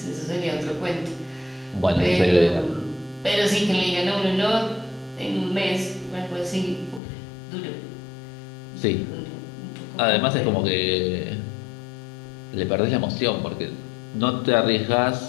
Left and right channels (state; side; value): drops out; right; at 7.0 s